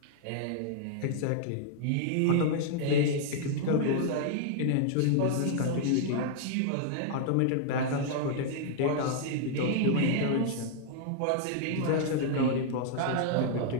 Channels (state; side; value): different; both; correlation -0.01